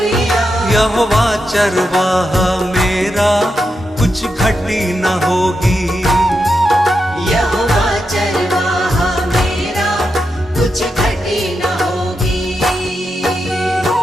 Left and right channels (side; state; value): both; normal; correlation 0.86